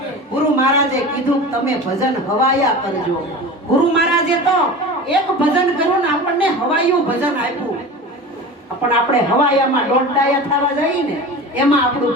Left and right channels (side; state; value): both; normal; correlation 0.33